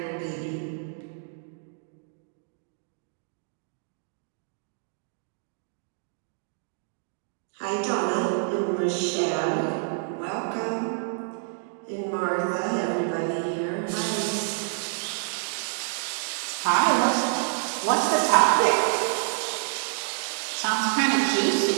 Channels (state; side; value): silent; left; digital silence